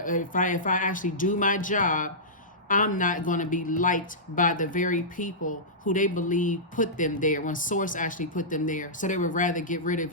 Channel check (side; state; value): both; normal; correlation -0.16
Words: I actually do my job, I'm not going to be liked by the very people who they believe put them there, when Source actually put them there. So they would rather get rid of